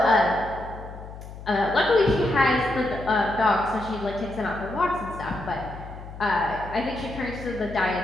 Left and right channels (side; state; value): left; noise; hum, 13 dB below the sound